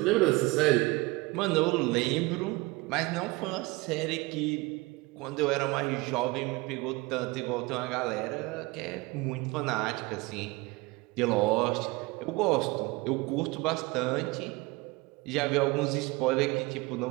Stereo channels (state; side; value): quieter; left; 23.5 dB